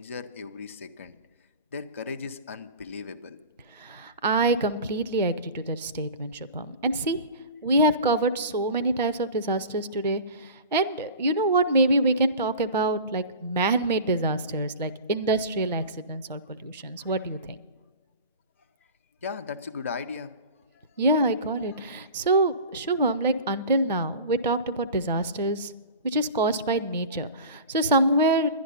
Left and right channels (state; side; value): inverted; both; correlation -0.36